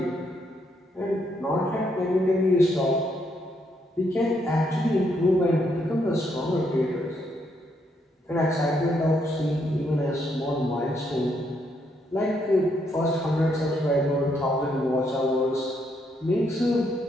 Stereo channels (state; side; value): normal; both; correlation 0.75